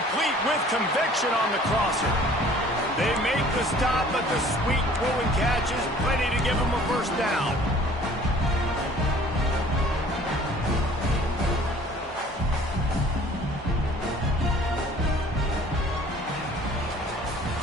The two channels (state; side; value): normal; both; correlation 0.52